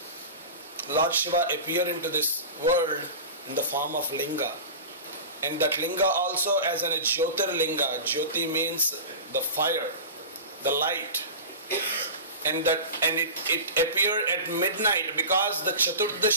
Lord Shiva appeared into this world in the form of Linga. And that Linga also as a Jyotirlinga. Jyoti means the fire, the light. And it appeared at midnight because the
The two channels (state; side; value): inverted; both; correlation -0.30